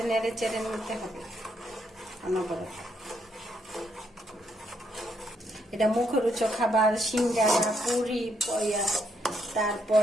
নেড়ে চেড়ে নিতে হবে অনবরত। এটা মুখরোচক খাবার, সিঙ্গারা, পুরি, পয়া, তারপর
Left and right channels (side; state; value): both; normal; correlation 0.75